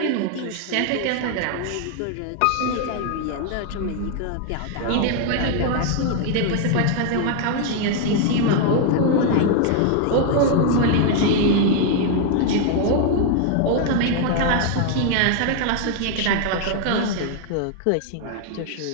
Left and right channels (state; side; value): different; both; correlation 0.00